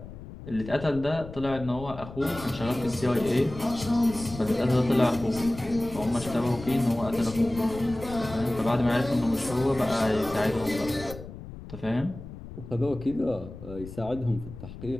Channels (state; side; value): noise; left; rumble, 13 dB below the sound